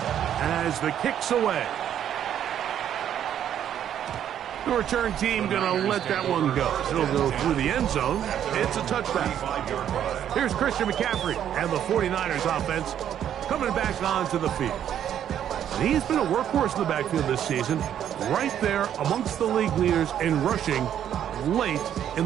as the kick's away. The return team going to let that one go. It'll go through the end zone. It's a touchback. Here's Christian McCaffrey and the 49ers offense coming back onto the field. And he's been a workhorse in the backfield this season, right there amongst the league leaders in rushing late in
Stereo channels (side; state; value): left; quieter; 10.0 dB